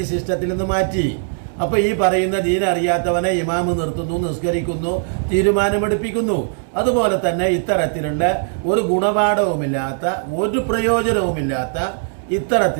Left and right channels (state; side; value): silent; left; 64 dB below the other